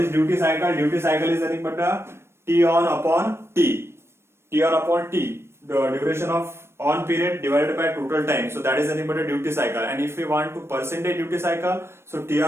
duty cycle? Duty cycle is nothing but a T on upon T. T on upon T, the duration of on period divided by total time. So that is nothing but a duty cycle. And if we want to percentage duty cycle, so T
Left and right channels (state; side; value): late; left; 0.12 ms